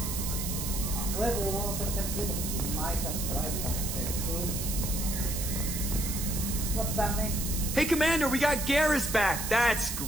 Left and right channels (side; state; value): right; noise; hiss, 4 dB below the sound